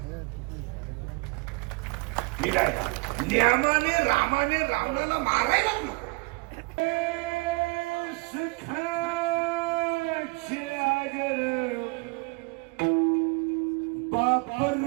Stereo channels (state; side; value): quieter; left; 27.2 dB